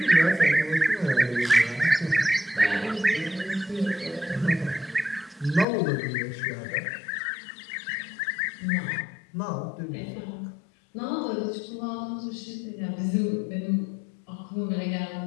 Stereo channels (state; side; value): drops out; right; at 5.7 s